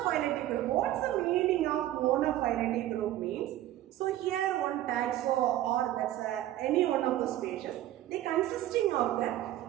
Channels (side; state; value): left; quieter; 13.8 dB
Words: group. What's the meaning of monophyletic group means? So here one taxo or that's any one of the species, they consisting of